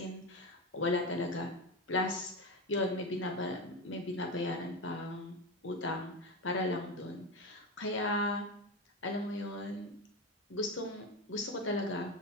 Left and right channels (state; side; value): normal; both; correlation 0.18